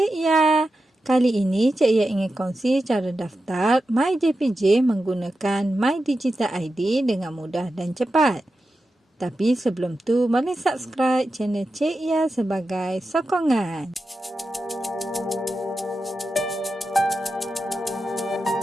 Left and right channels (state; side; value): normal; both; correlation 0.91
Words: Ya. Kali ini Cik Ya ingin kongsi cara daftar MyJPJ menggunakan My Digital ID dengan mudah dan cepat. Tapi sebelum tu, boleh subscribe channel Cik Ya sebagai sokongan.